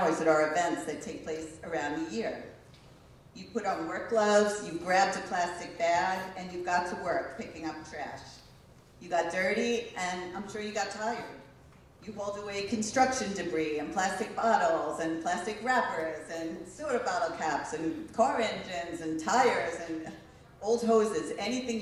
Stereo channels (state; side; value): identical; both; correlation 1.00